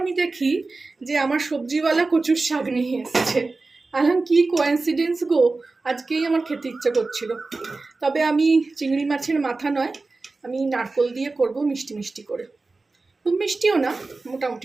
দেখি যে আমার সবজিওয়ালা কচুর শাক নিয়ে এসেছে। আলাম কি কোইন্সিডেন্স গো, আজকেই আমার খেতে ইচ্ছে করছিল। তবে আমি চিংড়ি মাছের মাথা নয়, আমি নারকোল দিয়ে করব, মিষ্টি মিষ্টি করে। খুব মিষ্টিও না,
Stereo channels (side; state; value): left; quieter; 3.6 dB